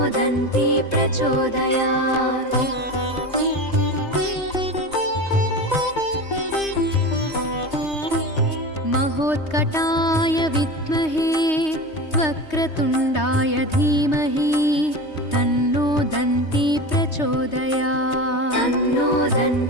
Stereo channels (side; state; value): right; late; 3.2 ms